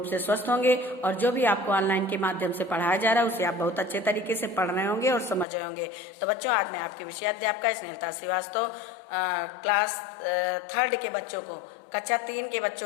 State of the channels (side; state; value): right; drops out; at 5.5 s